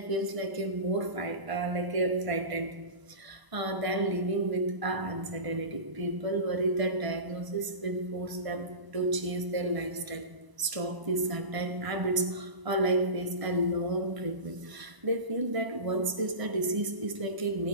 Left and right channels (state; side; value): late; left; 1.0 ms